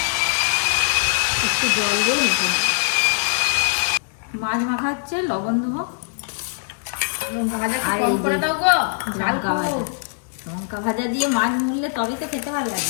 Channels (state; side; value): silent; right; 64 dB below the other